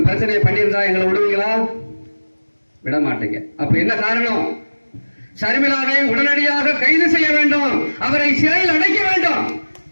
பிரச்சனையை பண்ணியிருந்தா எங்களை விடுவீங்களா? விட மாட்டீங்க. அப்ப என்ன காரணம்? சர்மிளாவை உடனடியாக கைது செய்ய வேண்டும், அவரை சிறையில் அடைக்க வேண்டும்.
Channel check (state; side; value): inverted; both; correlation -1.00